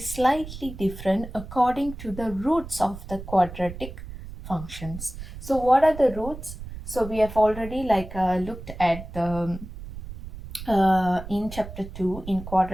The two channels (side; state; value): right; noise; rumble, 12 dB below the sound